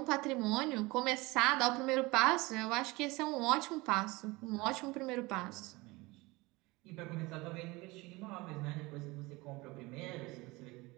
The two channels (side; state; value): left; quieter; 22.8 dB